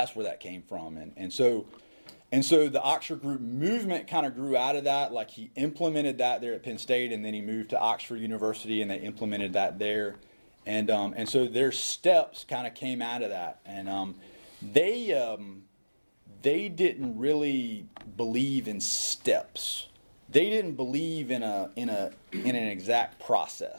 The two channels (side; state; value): both; inverted; correlation -1.00